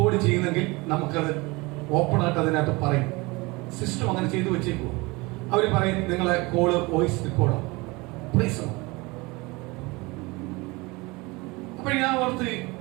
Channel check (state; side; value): quieter; left; 24.3 dB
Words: ചെയ്യുന്നെങ്കിൽ നമുക്കത് ഓപ്പൺ ആയിട്ട് അതിനകത്ത് പറയും. സിസ്റ്റം അങ്ങനെ ചെയ്തു വെച്ചേക്കുമോ. അവര് പറയും നിങ്ങളെ കോള് വോയിസ് റെക്കോർഡാണ്. അപ്പൊ ഞാൻ ഓർത്ത്,